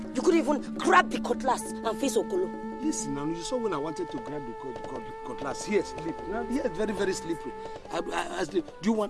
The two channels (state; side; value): identical; both; correlation 1.00